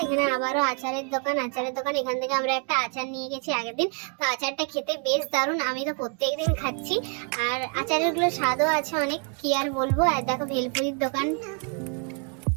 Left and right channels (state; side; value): quieter; left; 37.6 dB